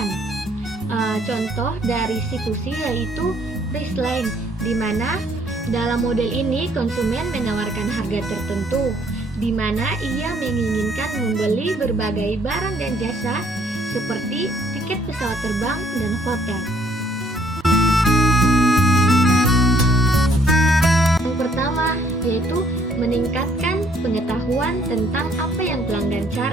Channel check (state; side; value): normal; both; correlation 0.65